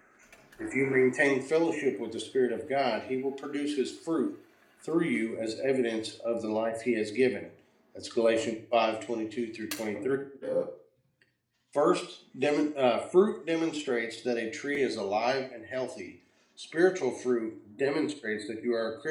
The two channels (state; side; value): identical; both; correlation 1.00